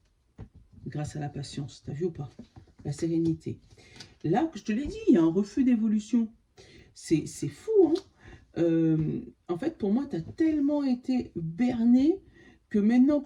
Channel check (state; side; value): identical; both; correlation 1.00